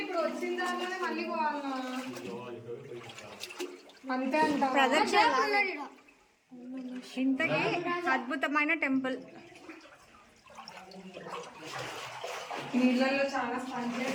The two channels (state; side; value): identical; both; correlation 1.00